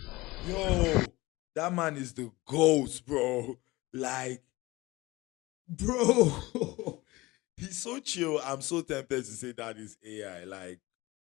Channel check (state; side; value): quieter; right; 20.6 dB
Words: Yo, that man is the ghost, bro. Like, bro, he's so chill. I'm so tempted to say that is AI. Like,